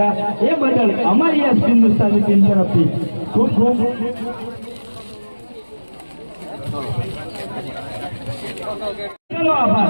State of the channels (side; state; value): both; inverted; correlation -1.00